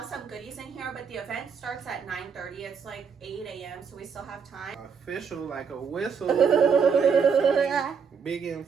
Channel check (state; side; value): quieter; left; 6.2 dB